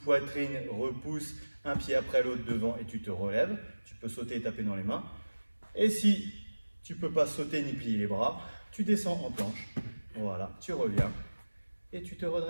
poitrine, repousse, un pied après l'autre devant et tu te relèves. Tu peux sauter et taper dans les mains. Et si tu ne peux pas sauter ni plier les bras, tu descends en planche. Voilà, tu reviens et tu te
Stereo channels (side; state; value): both; inverted; correlation -1.00